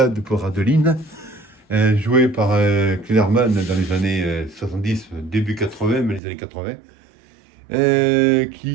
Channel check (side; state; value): left; drops out; at 6.2 s